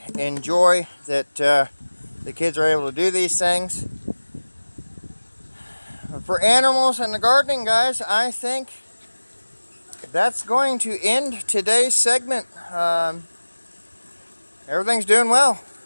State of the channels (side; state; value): both; inverted; correlation -1.00